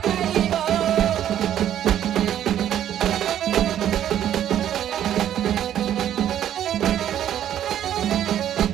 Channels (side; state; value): left; quieter; 10.9 dB